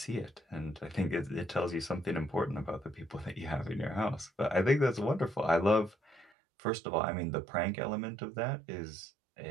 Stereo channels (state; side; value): drops out; left; at 6.3 s